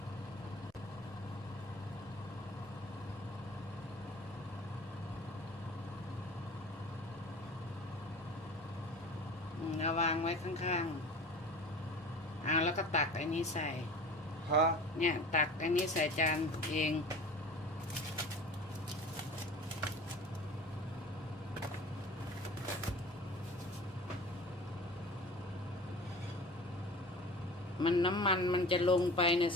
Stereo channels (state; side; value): normal; both; correlation 0.39